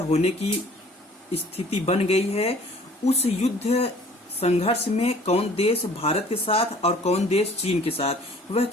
होने की स्थिति बन गई है। उस युद्ध संघर्ष में कौन देश भारत के साथ और कौन देश चीन के साथ, वह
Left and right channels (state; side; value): normal; both; correlation 0.53